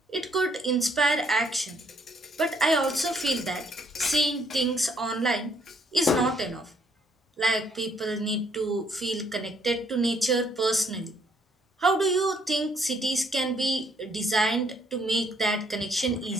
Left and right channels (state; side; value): normal; both; correlation 0.68